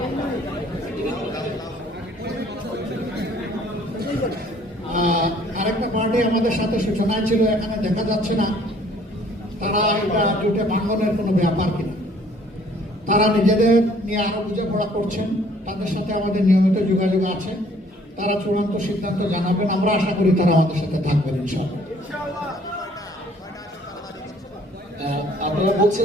আরেকটা পার্টি আমাদের সাথে সূচনায় ছিল, এখানে দেখা যাচ্ছে না তারা এটা জোটে ভাঙনের কোনো ব্যাপার কিনা। তারা নিজেদের নিয়ে আরো বোঝাপড়া করছেন, তাদের সাথে আমাদের নিয়মিত যোগাযোগ আছে। তারা চূড়ান্ত সিদ্ধান্ত জানাবেন, আমরা আশা করি তারা আমাদের সাথে থাকবেন ইনশাআল্লাহ। আপনারা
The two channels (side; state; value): both; normal; correlation 0.58